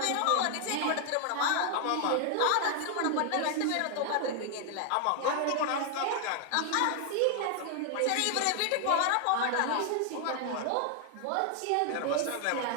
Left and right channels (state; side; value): different; both; correlation 0.00